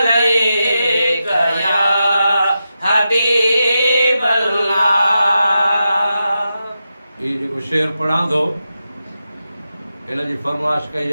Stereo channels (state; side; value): inverted; both; correlation -0.89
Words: या हबीब अल्लाह। ये जेको शेर पढ़ां थो इन जी फरमाइश कई